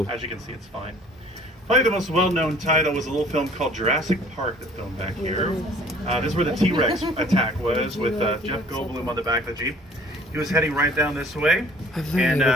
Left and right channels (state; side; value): normal; both; correlation 0.53